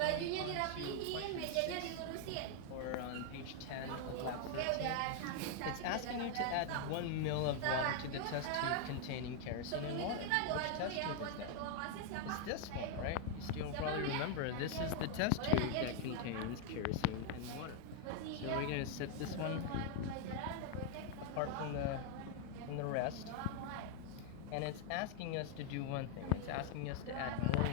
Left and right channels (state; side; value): different; both; correlation 0.00